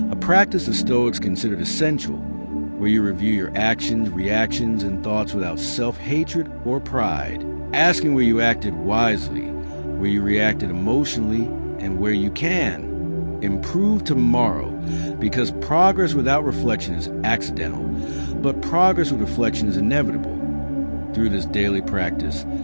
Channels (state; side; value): inverted; both; correlation -1.00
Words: a practice the Stoics considered essential, where you review your actions, reactions, and thoughts without self-hatred or pride, asking where you acted wisely, where you reacted emotionally, and where you can improve tomorrow, because progress without reflection is accidental, but progress with reflection is inevitable. Through this daily practice,